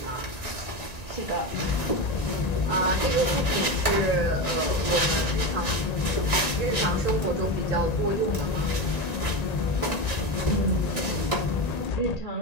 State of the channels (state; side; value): late; right; 1.8 ms